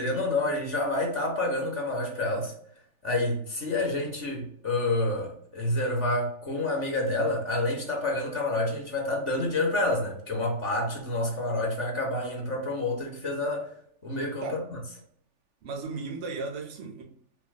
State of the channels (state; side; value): late; left; 3.4 ms